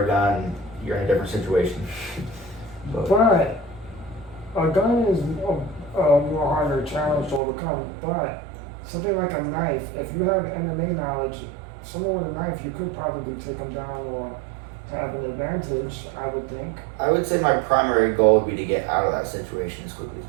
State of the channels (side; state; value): left; drops out; at 7.4 s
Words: a gun, you're in a different situation. But a gun is a more harder challenge to overcome. But something like a knife, if you have MMA knowledge, someone with a knife, you could probably take them down or have an advantage, I would think. I would say my primary goal would be to get out of that situation as quickly as